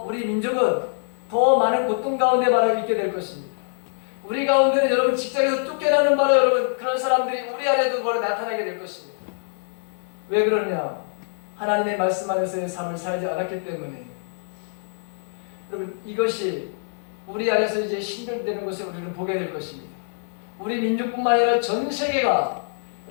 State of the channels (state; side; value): silent; right; digital silence